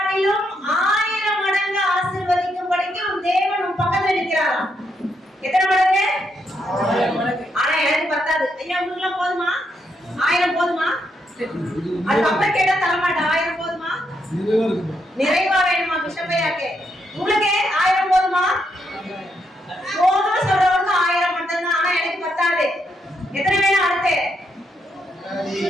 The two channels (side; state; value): both; normal; correlation 0.78